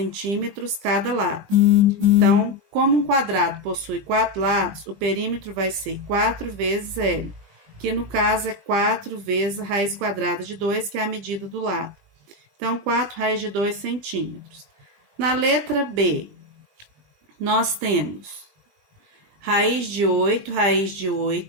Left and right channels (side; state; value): left; late; 20 ms